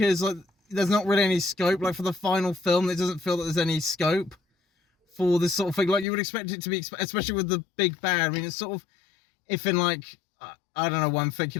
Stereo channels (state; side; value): drops out; right; at 6.1 s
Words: like, there's not really any scope, like for the final film, it doesn't feel that there's any scope for this sort of thing. Like you would expect it to be, especially with the big bad. I mean, it's sort of, if in like, I don't know why I'm